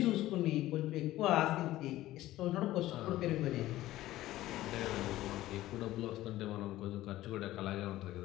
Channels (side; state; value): right; quieter; 15.5 dB